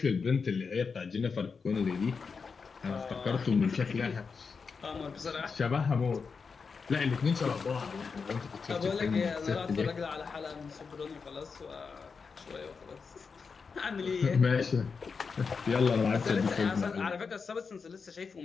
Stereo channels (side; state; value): right; quieter; 5.3 dB